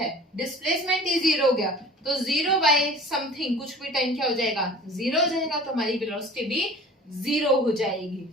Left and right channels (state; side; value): normal; both; correlation 0.43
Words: डिस्प्लेसमेंट ही जीरो हो गया, तो जीरो बाय समथिंग कुछ भी टाइम क्या हो जाएगा, जीरो हो जाएगा, तो हमारी वेलोसिटी भी जीरो हो जाएगी,